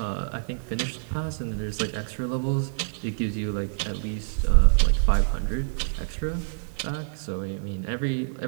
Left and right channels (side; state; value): left; silent; digital silence